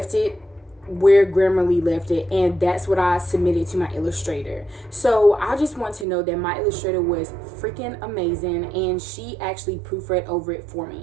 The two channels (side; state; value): left; drops out; at 6.1 s